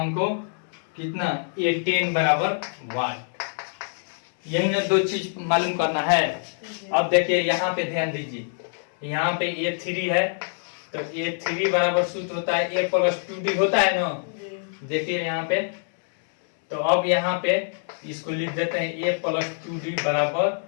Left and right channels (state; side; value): silent; right; digital silence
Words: कितना A10 बराबर वाट, यही ना दो चीज मालूम करना है। अब देखिए यहाँ पे ध्यान दीजिए, यहाँ पे A3 है, तो A3 बराबर सूत्र होता है A + 2D होता है ना, देखिए यहाँ पे। तो अब यहाँ पे इसको लिख देते हैं A + 2D बराबर